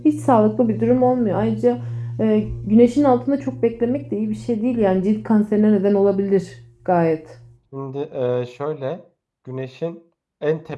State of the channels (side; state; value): both; identical; correlation 1.00